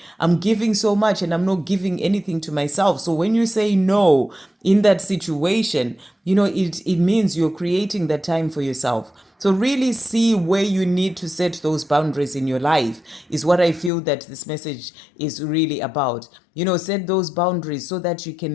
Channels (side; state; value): right; drops out; at 13.9 s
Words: I'm giving so much and I'm not giving anything to myself. So when you say no in that situation, it means you're creating that time for yourself. So really see where you need to set those boundaries in your life is what I feel that this message is really about. Set those boundaries so that you